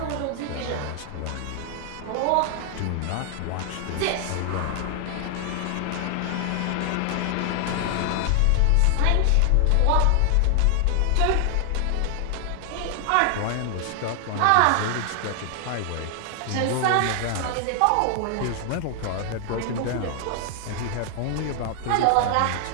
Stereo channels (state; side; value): different; both; correlation 0.00